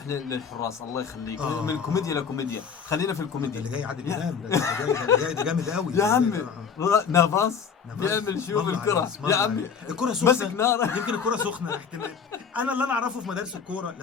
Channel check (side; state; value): right; quieter; 6.5 dB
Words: للحراس الله يخليك. من كوميديا لكوميديا، خلينا في الكوميديا. اللي جاي عادل امام ده جامد قوي يا عمي. نافاس بيعمل شو بالكره يا عمي، الكره سخنه مسك نار. يمكن الكره سخنه احتمال. انا اللي اعرفه في مدارس الكوره،